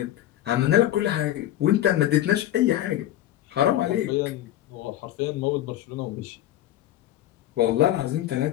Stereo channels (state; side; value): quieter; right; 13.3 dB